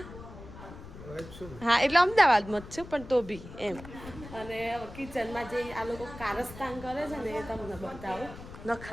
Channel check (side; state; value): left; noise; rumble, 14 dB below the sound